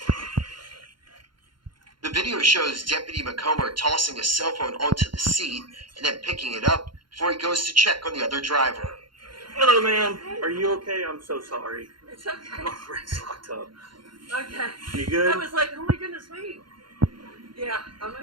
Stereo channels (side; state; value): left; late; 0.72 ms